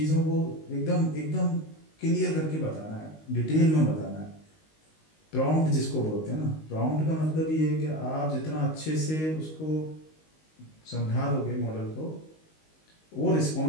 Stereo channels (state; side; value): late; right; 19 ms